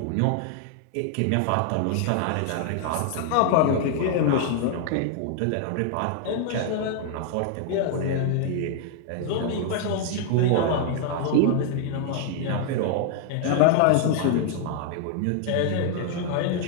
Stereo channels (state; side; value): different; both; correlation 0.00